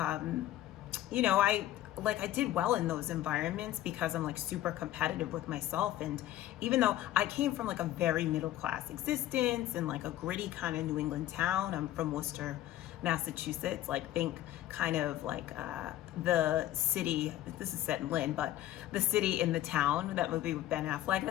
you know, I did well in those environments because I'm like super competitive with myself. And even though I came from like a very middle class existence and like a gritty kind of New England town, I'm from Worcester, Massachusetts, like think kind of like the city, this is set in Lynn, but the city in the town, that movie with Ben Affleck,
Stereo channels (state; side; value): quieter; right; 13.7 dB